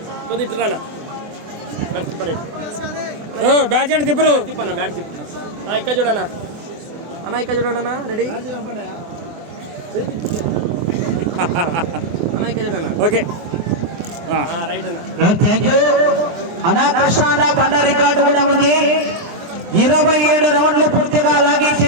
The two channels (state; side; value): late; left; 23 ms